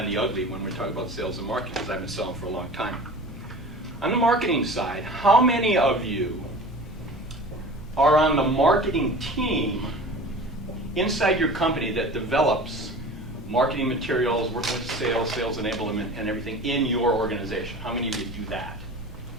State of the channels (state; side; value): normal; both; correlation 0.38